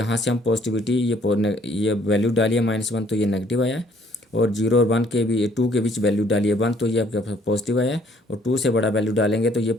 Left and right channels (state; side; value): normal; both; correlation 0.62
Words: से हम पॉजिटिविटी ये वैल्यू डालिए -1 तो ये नेगेटिव आया है, और 0 और 1 के भी 2 के बीच वैल्यू डालिए 1 तो ये आपके पास पॉजिटिव आया है, और 2 से बड़ा वैल्यू डालेंगे तो ये